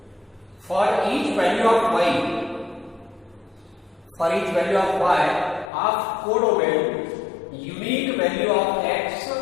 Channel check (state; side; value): drops out; right; at 5.7 s